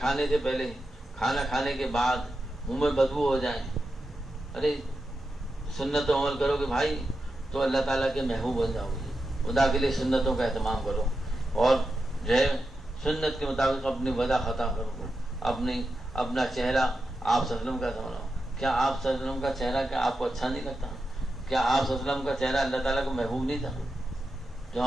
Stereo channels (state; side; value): normal; both; correlation 0.89